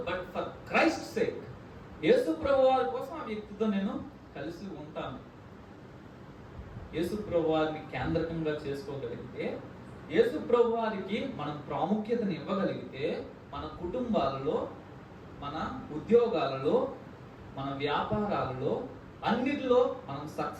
బట్ ఫర్ క్రైస్ట్ సేక్, యేసు ప్రభు వారి కోసం ఆ వ్యక్తితో నేను కలిసి ఉంటాను. యేసు ప్రభు వారిని కేంద్రకంగా చేసుకోగలిగితే, యేసు ప్రభు వారికి మనం ప్రాముఖ్యతను ఇవ్వగలిగితే, మన కుటుంబాలలో, మన ఉద్యోగాలలో, మన వ్యాపారాలలో అన్నిటిలో మనం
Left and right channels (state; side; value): identical; both; correlation 1.00